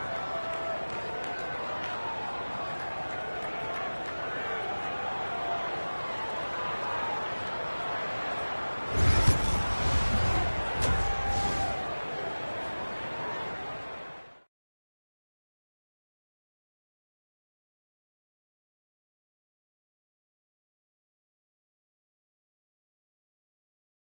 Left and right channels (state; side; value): inverted; both; correlation -1.00